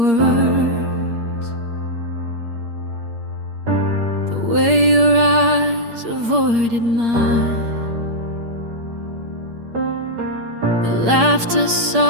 words, the way your eyes avoided mine. The laughter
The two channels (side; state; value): left; late; 8.6 ms